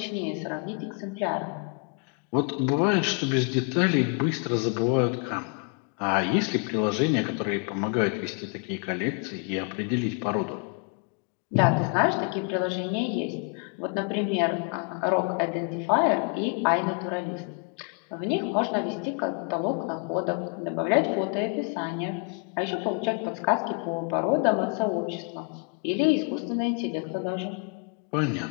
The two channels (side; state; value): right; quieter; 34.3 dB